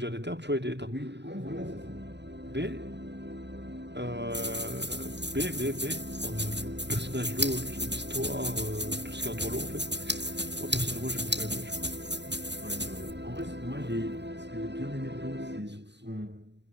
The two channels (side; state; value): left; late; 0.51 ms